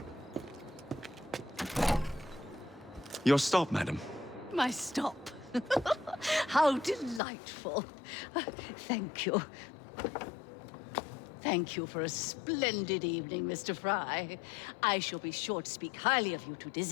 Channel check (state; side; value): drops out; right; at 7.2 s